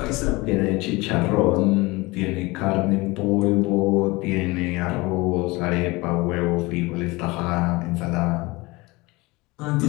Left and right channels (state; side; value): quieter; right; 23.0 dB